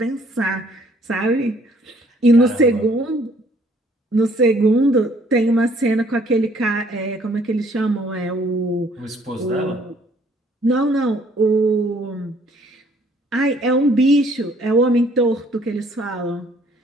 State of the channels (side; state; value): both; normal; correlation 0.61